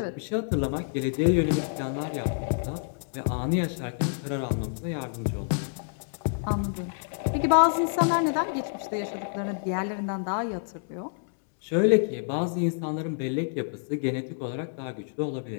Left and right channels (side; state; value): right; silent; digital silence